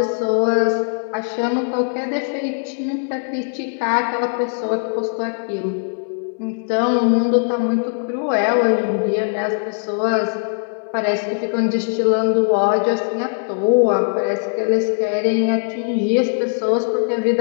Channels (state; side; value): silent; right; 65 dB below the other